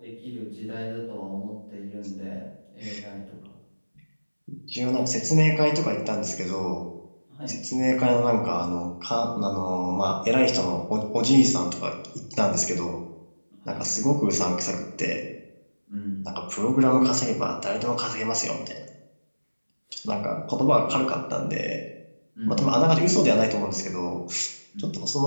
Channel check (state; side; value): inverted; both; correlation -1.00